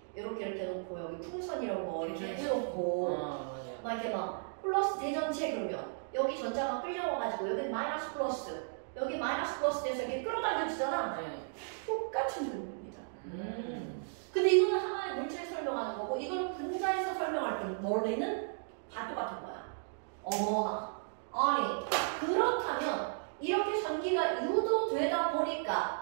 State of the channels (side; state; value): left; silent; digital silence